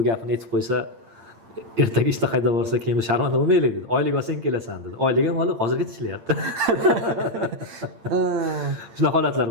gapini aytib qo'ysa, ertaga ishda qayda borsa, keyin sharmanda bo'lmaylik dedi. Oylik olsang kelasan dedi. Oylik ham olib, hozirgacha ishlayapti. Shunaqa holatlar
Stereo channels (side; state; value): left; late; 8.8 ms